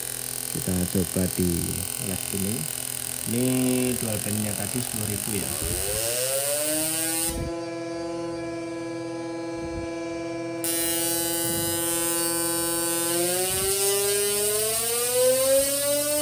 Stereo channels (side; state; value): both; identical; correlation 1.00